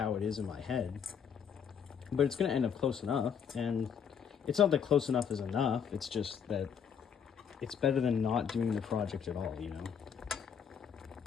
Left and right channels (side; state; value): right; quieter; 7.5 dB